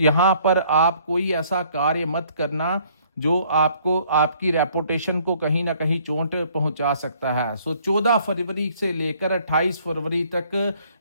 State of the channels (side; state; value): both; inverted; correlation -0.61